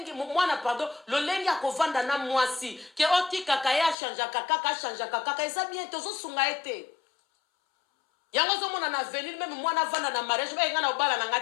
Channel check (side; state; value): right; drops out; at 4.0 s